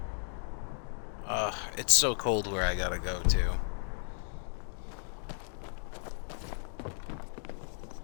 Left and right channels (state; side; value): silent; right; digital silence